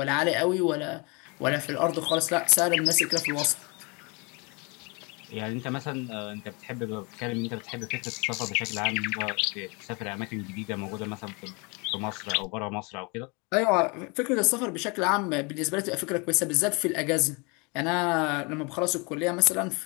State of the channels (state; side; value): quieter; right; 30.2 dB